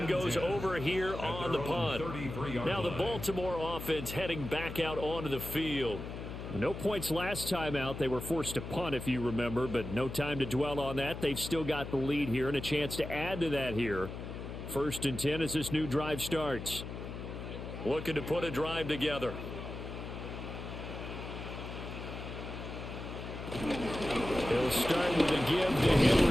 goes over here on the punt. Now the Baltimore offense heading back out onto the field. No points last time out. They were forced to punt, if you remember, but no time to dwell on that. They've still got the lead here and a chance to add to that here. 1st and 10 as this new drive starts. Looking to put a drive together. He'll start with a give to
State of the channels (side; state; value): left; noise; hum, 8 dB below the sound